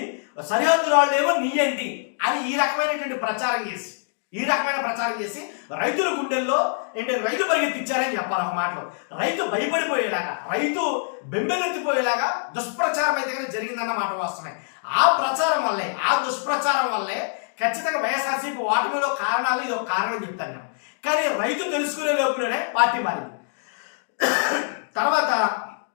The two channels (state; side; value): silent; right; digital silence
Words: సరిహద్దు రాళ్ళు ఏమో నీ ఏంటి అని ఈ రకమైన ప్రచారం చేసి రైతుల గుండెల్లో ఏంటి రైతు పరిగెత్తిచ్చారని చెప్పాలి. ఒక మాటలో రైతు భయపడిపోయేలాగా రైతు బెంబెలెత్తిపోయేలాగా దుష్ప్రచారం అయితే కానీ జరిగిందన్న మాట వాస్తవమే. ఆ దుష్ప్రచారం వల్లే ఖచ్చితంగా వైఎస్ఆర్సీపీ ఓటమిలో కారణాలు ఇది ఒక కారణం చెప్తాను నేను. కానీ రైతు తెలుసుకునే లోపులోనే పార్టీ మారింది. తర్వాత